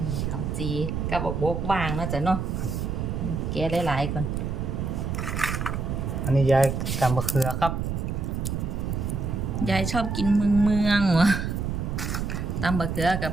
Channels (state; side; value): noise; right; rumble, 2 dB below the sound